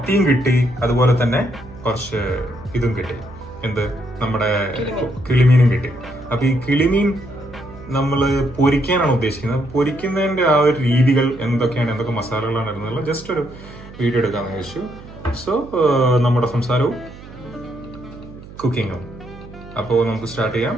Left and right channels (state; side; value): noise; right; hum, 17 dB below the sound